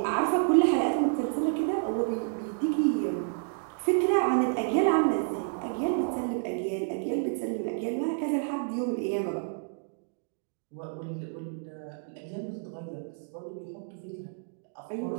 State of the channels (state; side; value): silent; left; digital silence